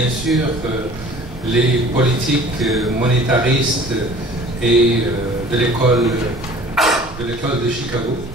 sûr les politiques monétaristes et de l'école de Chicago,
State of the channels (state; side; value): noise; right; rumble, 14 dB below the sound